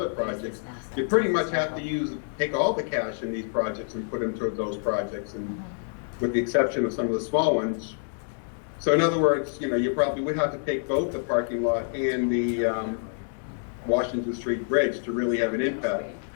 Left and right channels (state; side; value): silent; right; 60 dB below the other